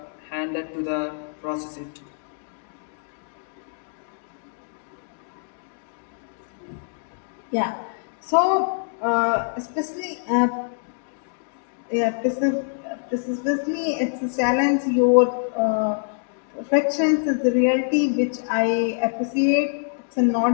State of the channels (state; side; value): silent; right; digital silence